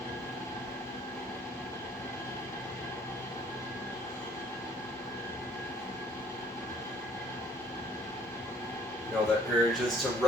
You know, that urge is to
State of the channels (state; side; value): normal; both; correlation 0.59